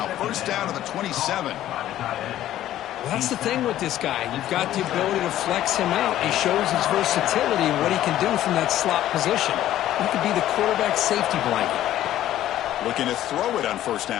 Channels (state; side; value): quieter; right; 13.0 dB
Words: First down to the 27. Well, that's the thing with this guy. You've got the ability to flex him out. He shows his versatility and what he can do from that slot position. He could be the quarterback safety blanket. Looking to throw it on first